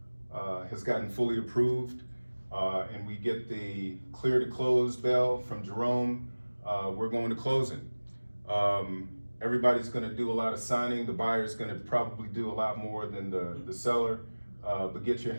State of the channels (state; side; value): inverted; both; correlation -1.00